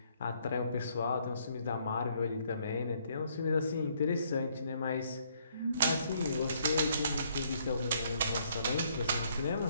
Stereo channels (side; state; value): both; inverted; correlation -0.68